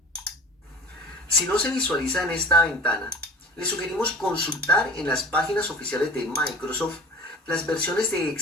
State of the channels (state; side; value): normal; both; correlation 0.40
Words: Si no se visualiza en esta ventana, le sugerimos consultar en las páginas oficiales de Microsoft las versiones de